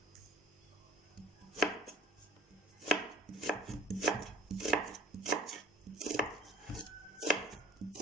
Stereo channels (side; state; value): both; normal; correlation 0.48